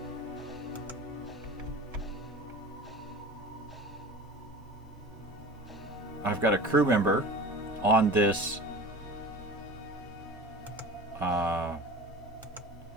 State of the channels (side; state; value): both; normal; correlation 0.37